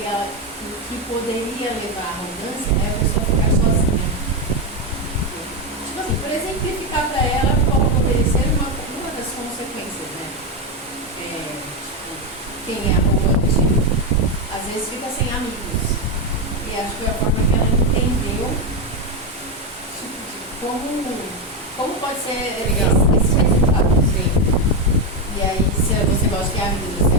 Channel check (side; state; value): both; normal; correlation 0.08